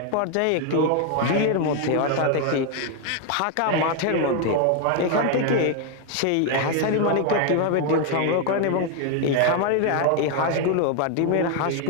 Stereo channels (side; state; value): both; different; correlation 0.01